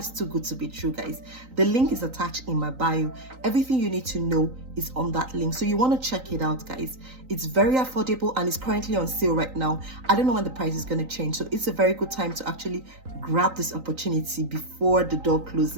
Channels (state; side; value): late; left; 3.9 ms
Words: too good to be true, guys. The link is attached in my bio. Everything you need to know is on that link, so you want to check it out, guys. It's very affordable and it's currently on sale right now. I don't know when the price is going to change, so it's a very good time to actually grab this opportunity before the door